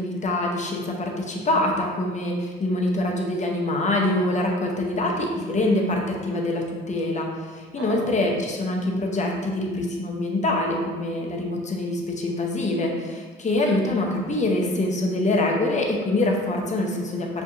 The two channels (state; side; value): normal; both; correlation 0.47